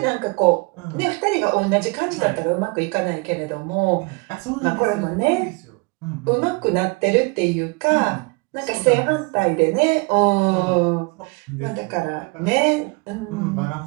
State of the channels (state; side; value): quieter; left; 28.9 dB